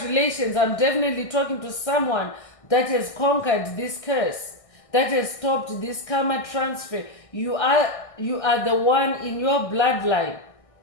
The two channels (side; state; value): right; late; 1.6 ms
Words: I'm definitely talking to someone that has conquered this curse, that has stopped this karma transfer. You are the one in your bloodline